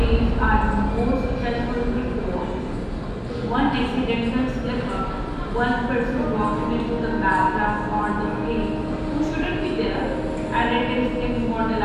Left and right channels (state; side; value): identical; both; correlation 1.00